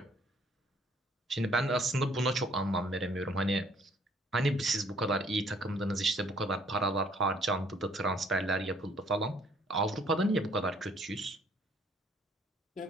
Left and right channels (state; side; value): normal; both; correlation 0.62